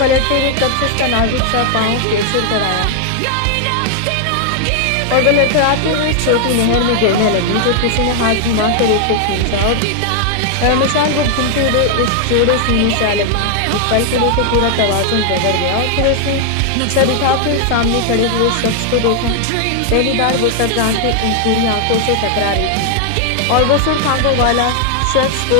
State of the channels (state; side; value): different; both; correlation 0.00